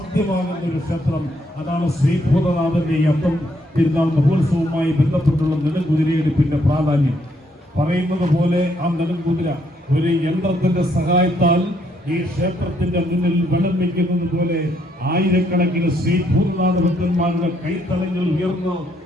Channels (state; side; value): normal; both; correlation 0.72